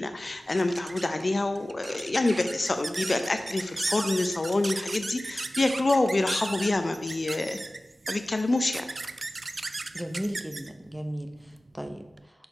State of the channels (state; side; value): normal; both; correlation 0.97